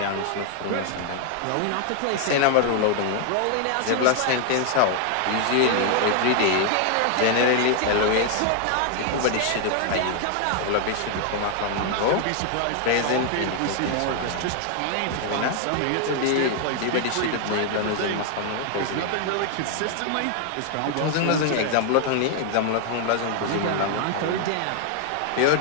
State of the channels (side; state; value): both; different; correlation 0.00